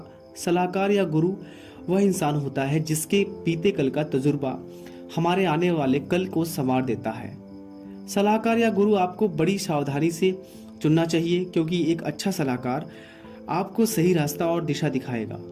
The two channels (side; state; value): both; identical; correlation 1.00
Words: सलाहकार या गुरु वह इंसान होता है जिसके बीते कल का तजुर्बा हमारे आने वाले कल को संवार देता है। सलाहकार या गुरु आपको बड़ी सावधानी से चुनना चाहिए, क्योंकि एक अच्छा सलाहकार आपको सही रास्ता और दिशा दिखाएगा,